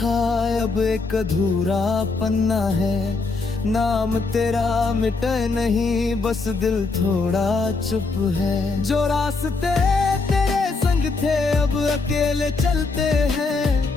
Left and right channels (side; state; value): right; quieter; 3.9 dB